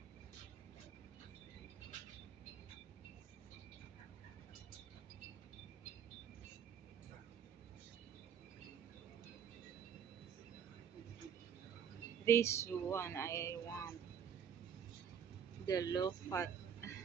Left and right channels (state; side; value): quieter; left; 7.9 dB